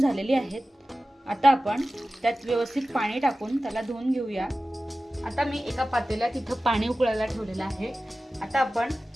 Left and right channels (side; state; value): both; normal; correlation 0.96